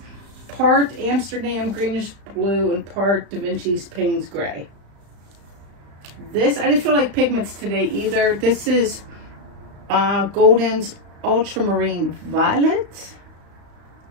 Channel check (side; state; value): left; late; 35 ms